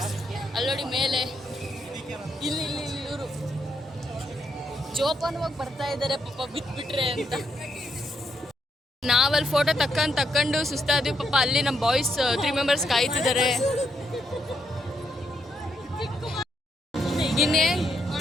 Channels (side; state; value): both; normal; correlation 0.78